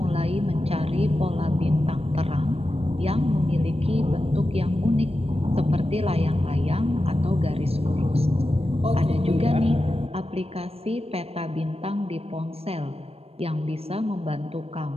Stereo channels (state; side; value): late; left; 0.29 ms